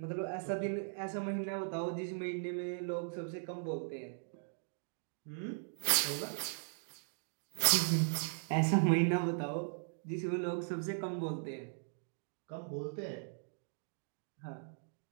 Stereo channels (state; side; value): silent; left; digital silence